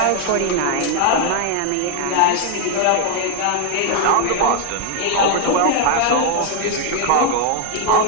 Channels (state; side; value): different; both; correlation 0.00